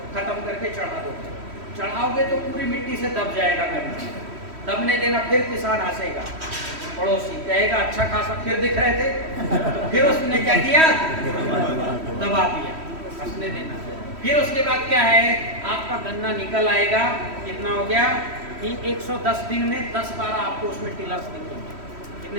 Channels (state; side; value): late; left; 3.1 ms